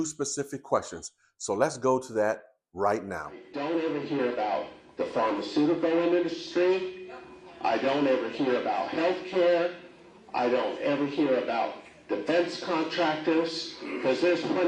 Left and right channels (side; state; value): both; identical; correlation 1.00